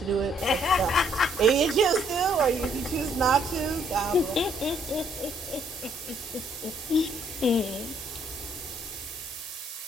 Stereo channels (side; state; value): both; normal; correlation 0.67